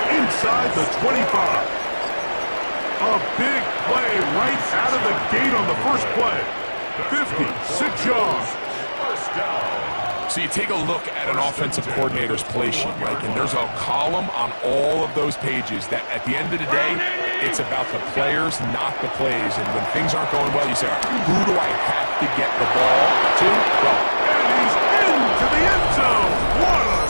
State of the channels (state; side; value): inverted; both; correlation -1.00